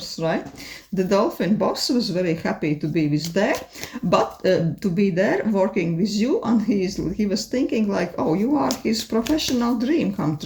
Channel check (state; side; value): identical; both; correlation 1.00